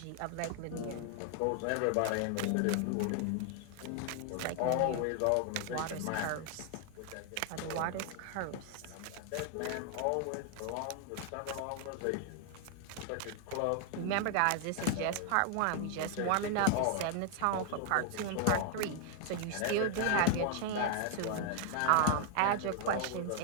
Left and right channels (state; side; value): different; both; correlation 0.00